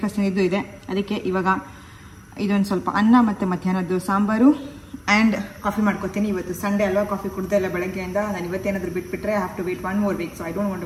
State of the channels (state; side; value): identical; both; correlation 1.00